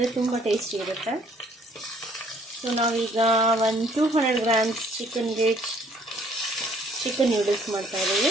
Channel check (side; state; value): both; normal; correlation 0.61